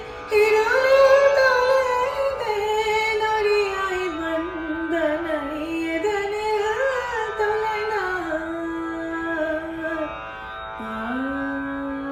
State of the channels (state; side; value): identical; both; correlation 1.00